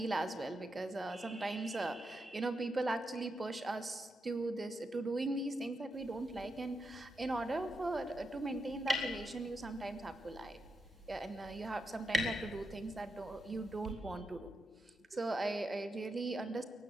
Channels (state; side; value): normal; both; correlation 0.86